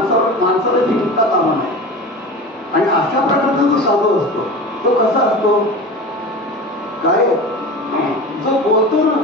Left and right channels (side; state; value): both; normal; correlation 0.32